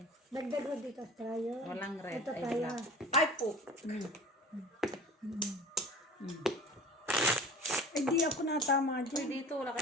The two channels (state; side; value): normal; both; correlation 0.39